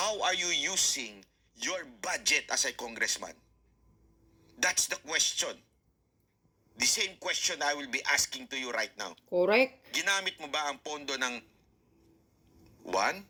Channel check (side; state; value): both; identical; correlation 1.00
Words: are you using your budget as a congressman? That's the question. The same question I will be asking to you right now. Correct. Ginamit mo ba ang pondo ng